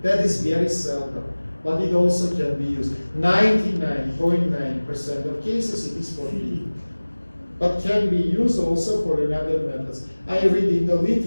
That is very seldom. But it also can be used. 99.9% of cases it is for feeding. But can be used also for another methods. I read in the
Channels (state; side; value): inverted; both; correlation -1.00